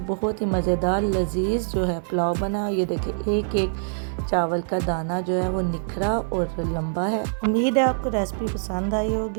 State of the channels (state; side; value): silent; left; digital silence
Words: बहुत ही मज़ेदार लजीज जो है पुलाव बना। ये देखिए एक एक चावल का दाना जो है वो निखरा और लंबा है। उम्मीद है आपको रेसिपी पसंद आई